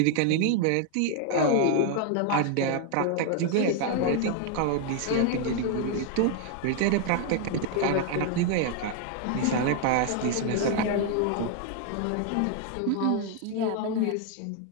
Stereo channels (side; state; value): both; different; correlation 0.00